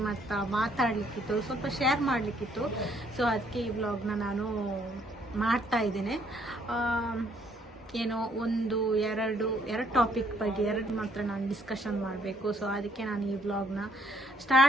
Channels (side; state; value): both; normal; correlation 0.66